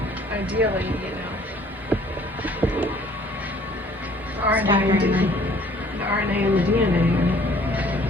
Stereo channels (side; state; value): both; normal; correlation 0.57